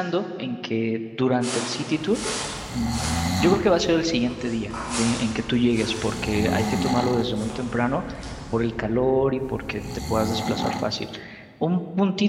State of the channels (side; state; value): both; identical; correlation 1.00